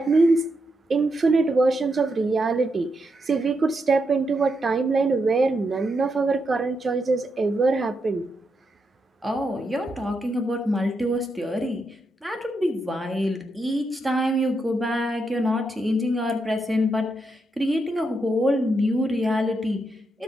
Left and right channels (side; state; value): both; normal; correlation 0.82